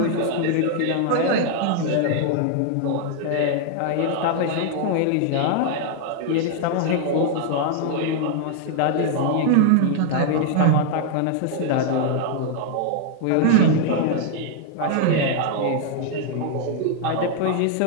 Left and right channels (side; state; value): both; different; correlation 0.00